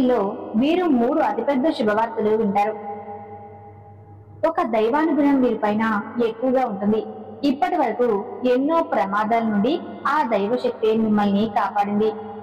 వీరు 3 అతిపెద్ద శుభవార్తలు వింటారు. ఒక దైవానుగ్రహం వీరిపైన ఎక్కువగా ఉంటుంది. ఇప్పటి వరకు ఎన్నో ప్రమాదాల నుండి ఆ దైవశక్తి మిమ్మల్ని కాపాడింది.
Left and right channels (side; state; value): both; identical; correlation 1.00